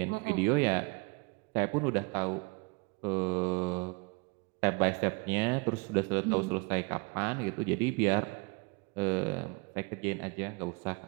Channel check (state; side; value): quieter; left; 29.7 dB